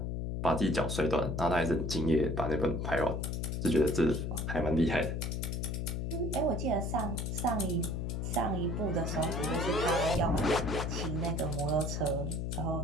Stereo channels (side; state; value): left; noise; hum, 2 dB below the sound